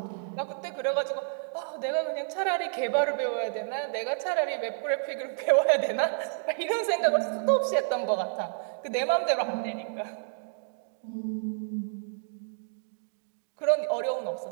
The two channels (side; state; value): left; silent; digital silence